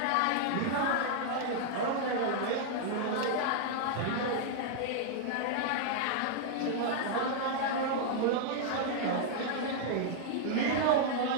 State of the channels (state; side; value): different; both; correlation -0.01